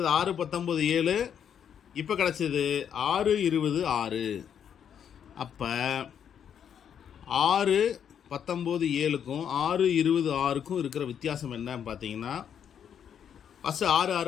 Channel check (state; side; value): quieter; right; 8.5 dB